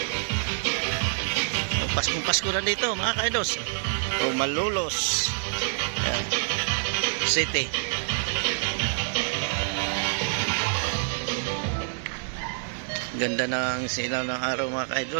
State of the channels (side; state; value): left; silent; digital silence